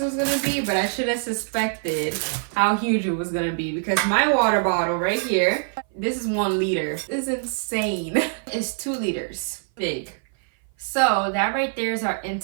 was gonna be, but I should have suspected how huge it was gonna be because my water bottle right here, this is 1 liter. This is insane. It's 2 liters big. So that right there is our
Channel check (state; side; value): silent; left; 57 dB below the other